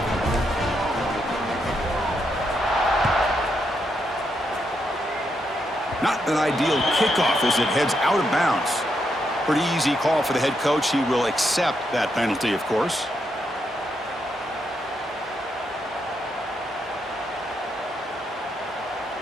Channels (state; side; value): normal; both; correlation 0.80